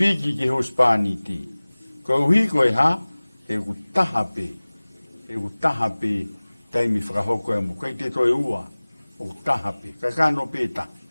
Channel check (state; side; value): inverted; both; correlation -1.00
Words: ki he uspaniti. Koe uhi koe ha, he ku taha pe. He ku taha pe, taimi whakahoko e mo. Kei te toi ua, o ku taha pe. Kakano pe ta.